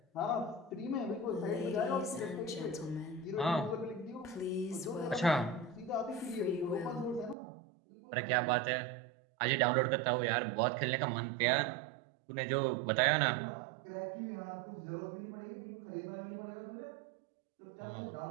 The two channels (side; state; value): left; drops out; at 7.4 s